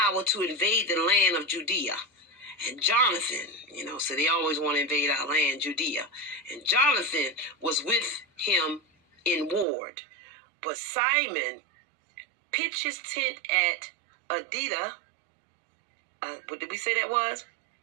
to invade the land of Judea. And Jonathan, so they always want to invade our land, Judea. And Jonathan was with him in ward. But Simon pitched his tent at Adida. What did we say that was?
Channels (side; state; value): left; drops out; at 9.7 s